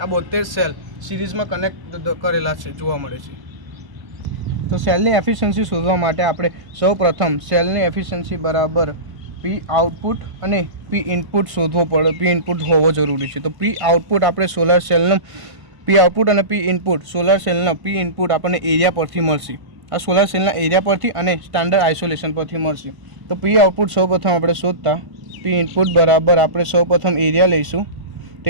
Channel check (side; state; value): left; late; 1.0 ms